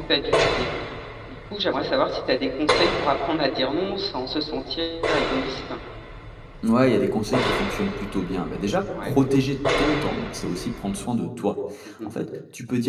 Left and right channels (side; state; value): both; identical; correlation 1.00